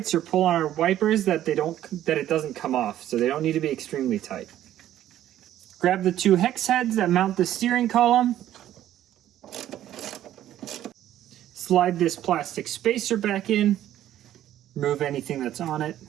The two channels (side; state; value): left; quieter; 12.4 dB